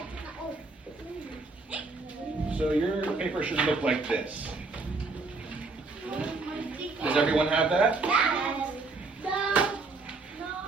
So your paper should look like this. Does everyone have that?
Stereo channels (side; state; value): left; quieter; 3.8 dB